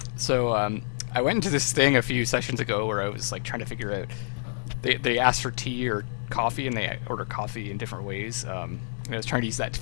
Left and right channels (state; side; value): silent; right; digital silence